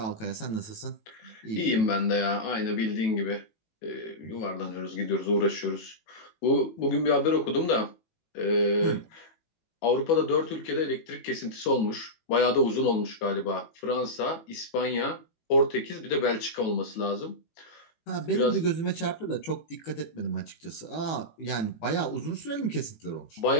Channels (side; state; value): right; late; 18 ms